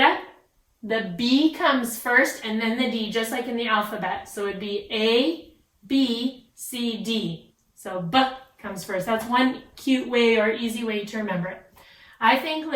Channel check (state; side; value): identical; both; correlation 1.00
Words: the B comes first and then the D, just like in the alphabet. So it would be A, B, C, D. So B comes first. That's one cute way or easy way to remember it. I think